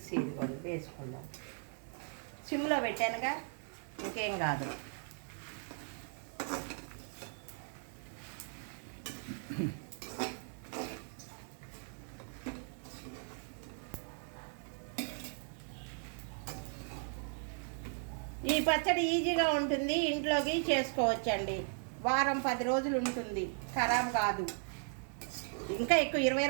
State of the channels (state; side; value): silent; left; 53 dB below the other